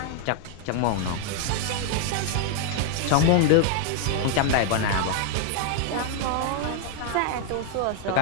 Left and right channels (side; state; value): both; different; correlation 0.00